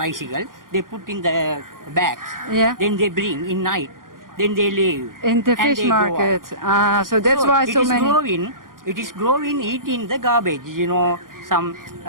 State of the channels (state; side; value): late; left; 0.90 ms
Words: they put in the bags. Yeah. Then they bring in night. Then they leave. In the and fish they go out. market. Ah, so that's why so many. It is growing, eating the garbage, some